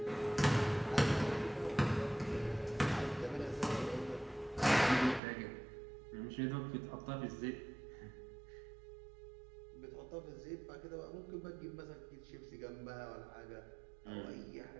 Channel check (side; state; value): left; drops out; at 5.2 s